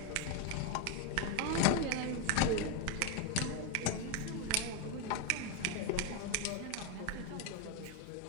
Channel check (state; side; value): different; both; correlation 0.02